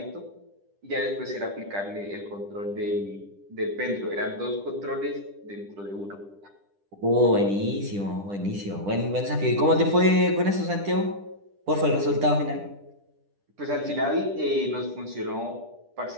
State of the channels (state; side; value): late; left; 10 ms